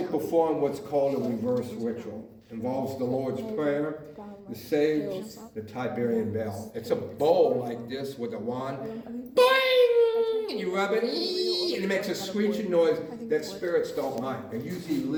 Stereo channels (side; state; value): both; identical; correlation 1.00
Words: perform what's called a reverse ritual. Involves the Lord's Prayer, the sage, the Tiberian bell. It's a bowl like this with a wand. Boing! And you rub it, and it makes a screeching noise that spirits don't mind. They usually